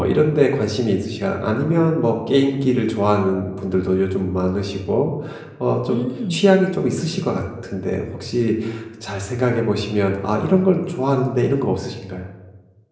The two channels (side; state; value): both; identical; correlation 1.00